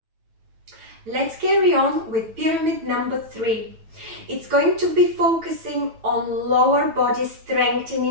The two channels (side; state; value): left; late; 9.1 ms